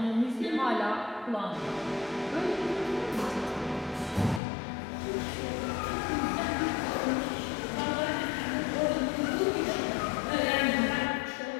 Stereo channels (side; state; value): right; drops out; at 4.4 s